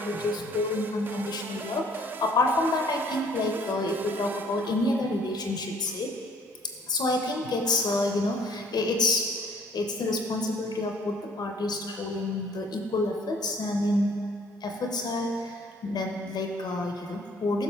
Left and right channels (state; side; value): normal; both; correlation 0.58